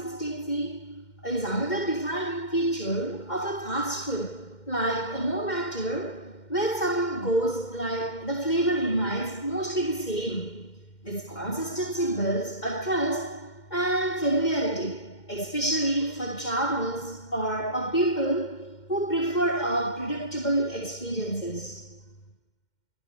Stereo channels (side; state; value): right; late; 2.1 ms